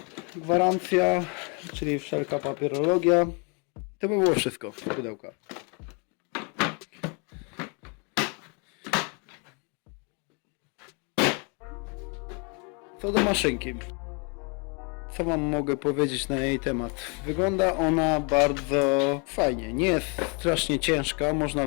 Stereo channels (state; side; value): quieter; right; 34.5 dB